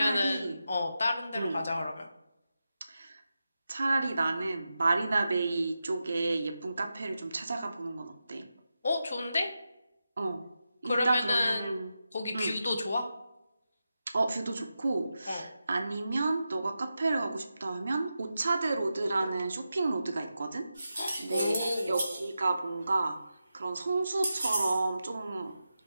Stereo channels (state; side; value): inverted; both; correlation -0.90